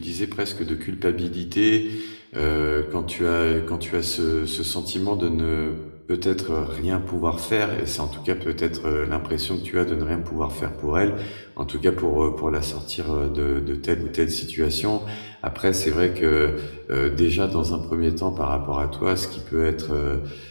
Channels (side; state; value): both; inverted; correlation -1.00